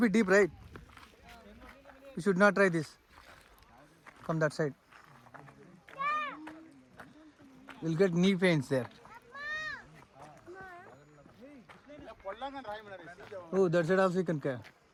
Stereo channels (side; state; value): both; identical; correlation 1.00